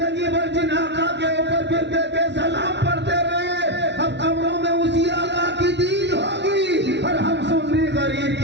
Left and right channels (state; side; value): late; left; 0.51 ms